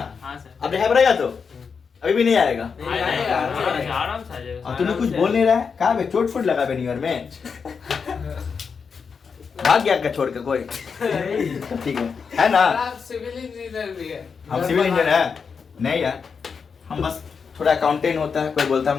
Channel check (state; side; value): quieter; right; 5.8 dB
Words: हाँ सर। अब रह पड़ेगा तो अभी भी नहीं आएगा। आराम से आ जाएगा। और तूने कुछ बोल नहीं रहा है, कहा बे चोट फुट लगा बे न्यू ईयर में, भाग गया क्या छोड़ के कोई? ठीक है ना। आप सिविल इंजीनियर भी है। हम सिविल इंजीनियर है नहीं यार, हम बस थोड़ा अकाउंटेंट होता है, कोई बोलता है